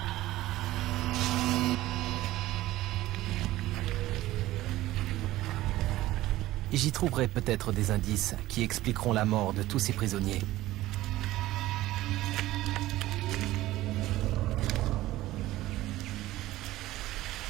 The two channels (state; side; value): quieter; left; 16.3 dB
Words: J'y trouverai peut-être des indices qui expliqueront la mort de tous ces prisonniers.